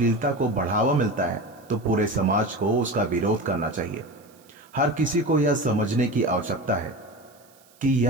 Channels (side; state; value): right; noise; hiss, 29 dB below the sound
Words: को बढ़ावा मिलता है तो पूरे समाज को उसका विरोध करना चाहिए। हर किसी को यह समझने की आवश्यकता है कि